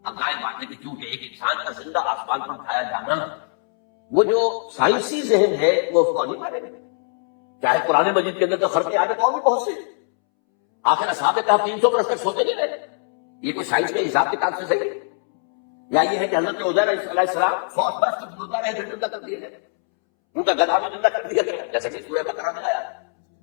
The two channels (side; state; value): right; silent; 64 dB below the other